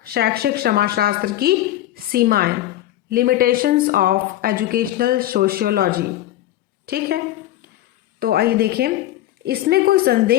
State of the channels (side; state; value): right; quieter; 14.1 dB